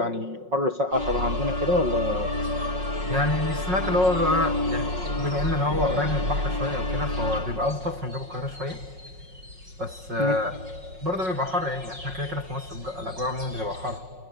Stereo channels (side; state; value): left; late; 5.5 ms